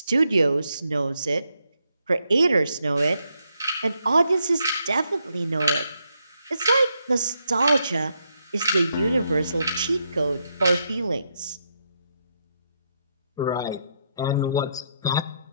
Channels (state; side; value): inverted; both; correlation -0.79